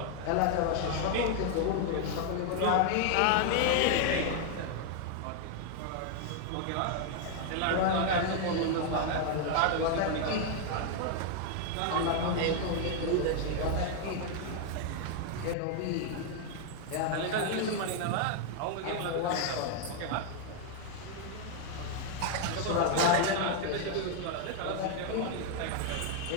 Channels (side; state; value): both; different; correlation 0.00